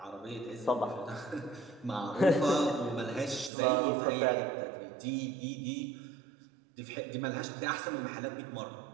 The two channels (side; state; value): left; drops out; at 3.5 s